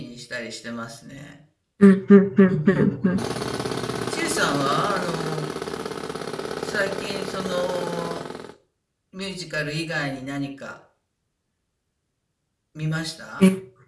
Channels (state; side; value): identical; both; correlation 1.00